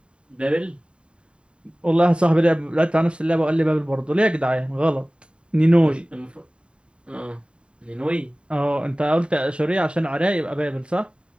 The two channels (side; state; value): left; late; 0.054 ms